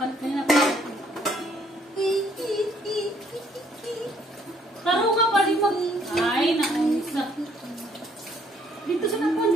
Kanina pa. Taro ka pa rin mag... Ay, naunsa. Dito sa nakuha,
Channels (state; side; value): normal; both; correlation 0.65